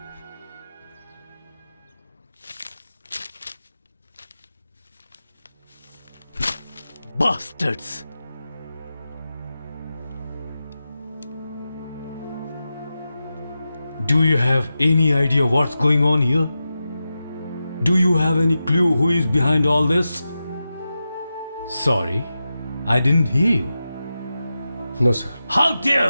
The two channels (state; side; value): inverted; both; correlation -0.92